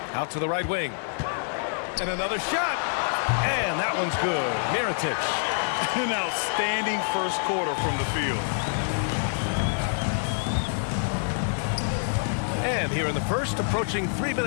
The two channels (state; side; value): silent; right; 57 dB below the other